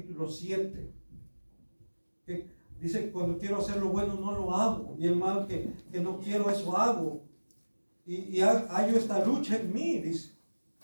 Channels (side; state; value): both; inverted; correlation -1.00